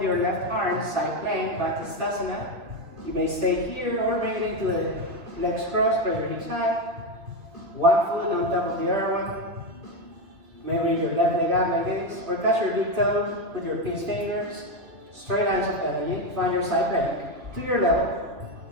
your left arm, side plank, back to Stasana. You may stay here or bring it into the legs crossed, press your hips high. One foot on top of the other one. Maybe your left leg up like this, or touch your big toe with your pinch fingers. Straight lines of energy. Find your side plank to your level.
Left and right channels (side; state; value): left; late; 2.4 ms